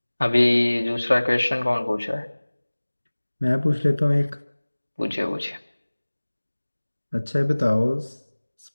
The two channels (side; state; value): both; inverted; correlation -1.00